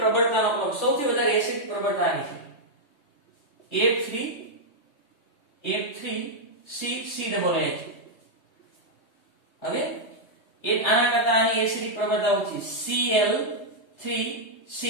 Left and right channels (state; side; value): late; right; 3.2 ms